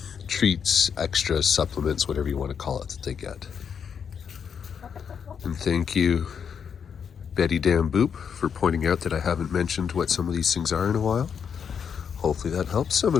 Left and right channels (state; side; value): quieter; right; 7.2 dB